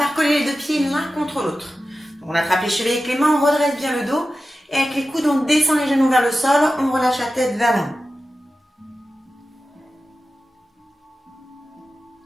coller les deux pieds l'un contre l'autre. On attrape les chevilles avec les mains, on redresse bien le dos, et avec les coudes, on descend les genoux vers le sol, on relâche la tête vers l'avant.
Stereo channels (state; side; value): normal; both; correlation 0.93